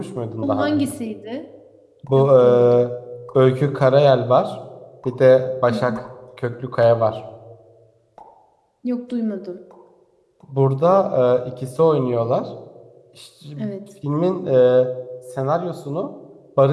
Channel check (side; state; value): both; identical; correlation 1.00